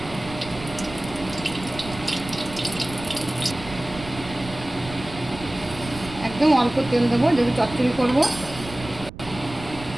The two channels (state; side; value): noise; right; rumble, 14 dB below the sound